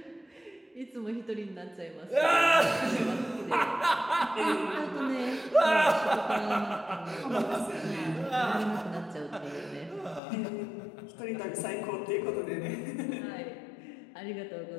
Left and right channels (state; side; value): drops out; right; at 10.2 s